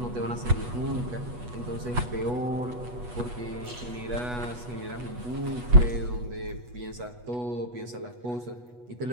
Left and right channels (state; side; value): late; left; 8.2 ms